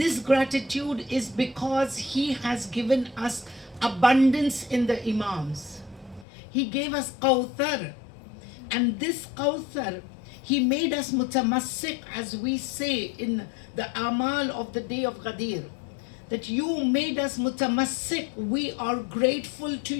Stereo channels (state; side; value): drops out; right; at 6.2 s